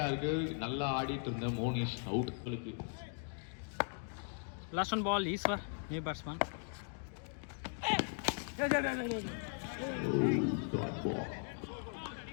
நல்லா ஆடிட்டு இருந்த Monish out. Last one ball Eswar new batsman.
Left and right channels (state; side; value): silent; right; 52 dB below the other